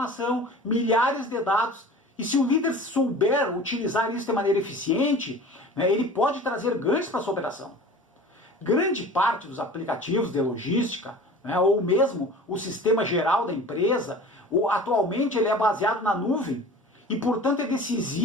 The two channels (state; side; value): normal; both; correlation 0.41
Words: milhares de dados. E se o líder souber utilizar isso de maneira eficiente, né, ele pode trazer ganhos para a sua operação. Grande parte dos aplicativos de logística, né, ou mesmo o sistema geral da empresa, atualmente ele é baseado na nuvem e, portanto, é